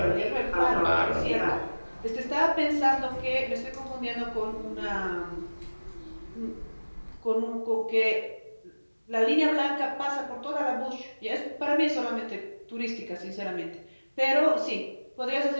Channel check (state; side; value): inverted; both; correlation -1.00